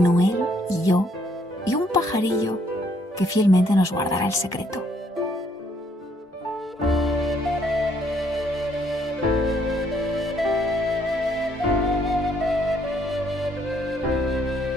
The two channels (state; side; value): normal; both; correlation 0.68